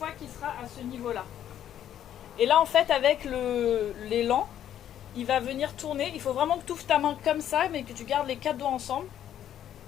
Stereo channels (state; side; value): quieter; right; 10.7 dB